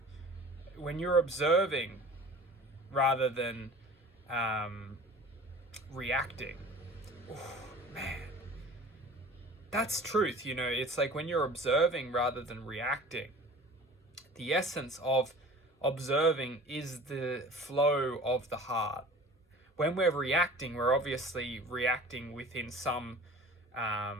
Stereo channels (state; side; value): normal; both; correlation 0.42